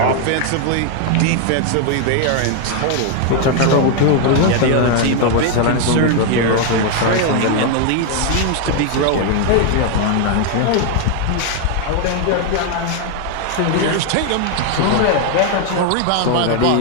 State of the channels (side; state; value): both; different; correlation 0.01